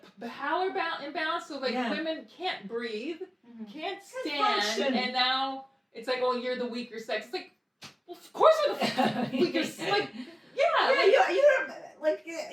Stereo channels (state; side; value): identical; both; correlation 1.00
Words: power imbalance. So like Yeah. women can't breathe, Mhm. can't Can't stand, function. and now it's like, oh, you're the weaker sex. It's like, well, of course we're the weaker. Like, yeah, Yeah, like, you're like